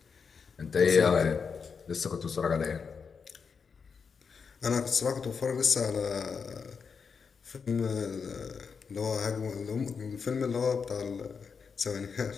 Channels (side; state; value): right; quieter; 5.8 dB